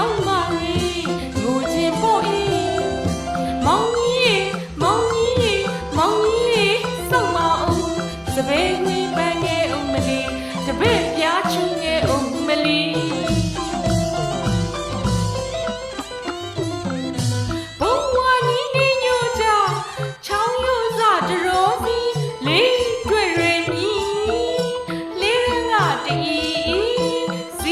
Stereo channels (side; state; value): both; identical; correlation 1.00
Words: ာင်းမတွေငိုခြင်းပေါ်ဤမောင်ကြီးမောင်ကြီးမောင်ကြီးစောက်မအောင်စပယ်ကွေးပန်းငယ်ဦးမလီတပည့်ပြားချူငယ်ဦးမလီ